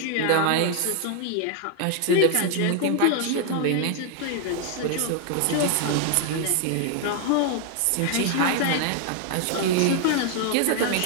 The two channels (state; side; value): different; both; correlation 0.00